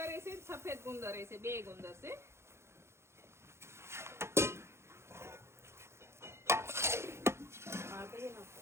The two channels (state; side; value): late; left; 0.13 ms